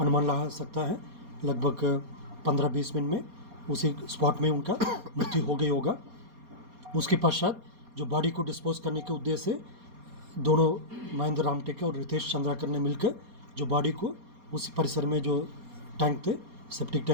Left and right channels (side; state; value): left; late; 4.2 ms